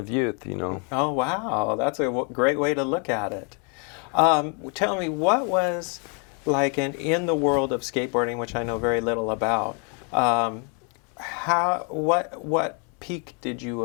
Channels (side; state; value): right; quieter; 37.4 dB